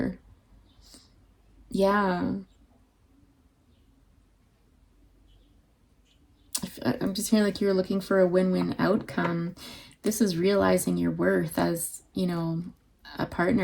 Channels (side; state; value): both; identical; correlation 1.00